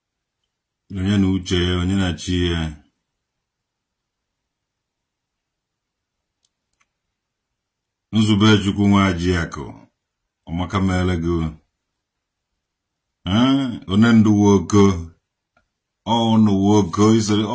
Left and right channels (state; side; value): identical; both; correlation 1.00